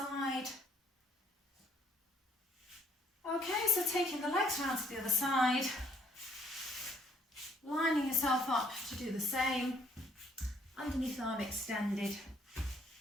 Okay, so taking the legs round to the other side, lining yourself up to do the same, underneath arm extended,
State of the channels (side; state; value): both; normal; correlation 0.65